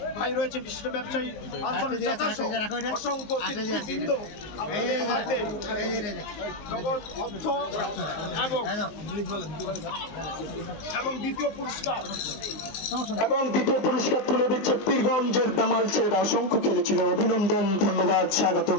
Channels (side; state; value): right; late; 19 ms